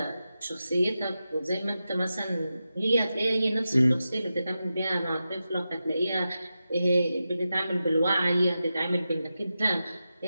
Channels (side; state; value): both; inverted; correlation -0.91